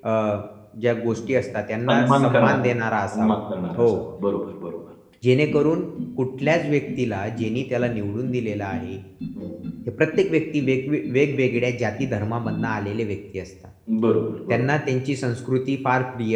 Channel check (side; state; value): both; identical; correlation 1.00